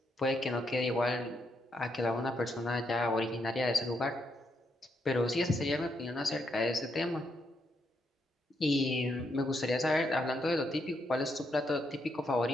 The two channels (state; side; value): normal; both; correlation 0.78